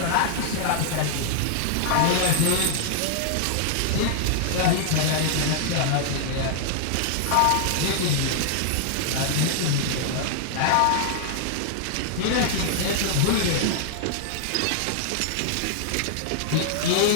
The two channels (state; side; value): different; both; correlation -0.01